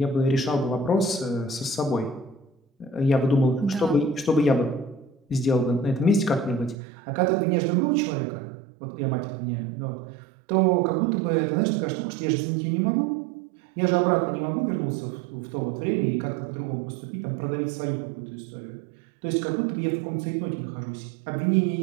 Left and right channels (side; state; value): left; drops out; at 6.8 s